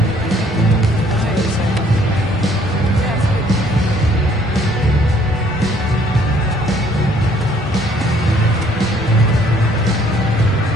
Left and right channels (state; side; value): normal; both; correlation 0.62